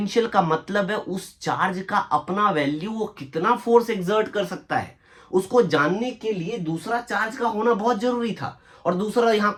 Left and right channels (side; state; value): both; identical; correlation 1.00